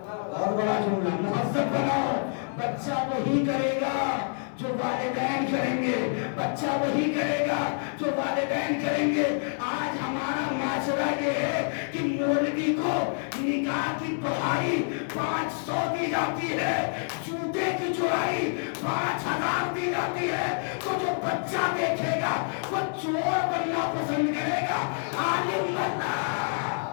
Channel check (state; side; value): silent; right; 60 dB below the other